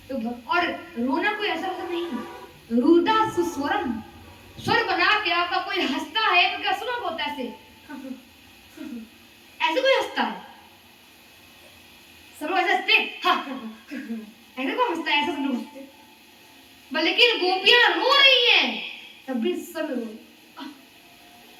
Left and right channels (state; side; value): identical; both; correlation 1.00